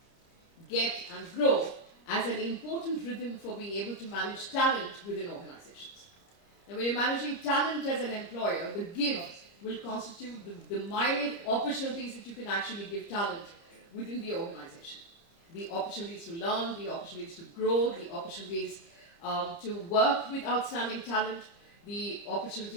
get, and grow as an important rhythm for being able to manage talent within organizations. Now, when you're managing talent as an employer, the give will constitute the myriad opportunities that you can actually give talent within the organization. The opportunities to learn, the opportunities to grow, the opportunities to work with outstanding talent, the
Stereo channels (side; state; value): right; late; 30 ms